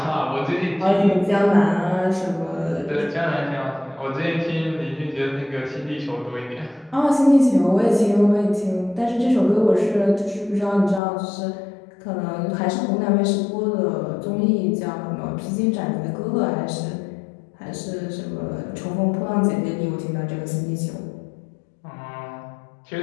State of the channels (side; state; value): right; drops out; at 11.0 s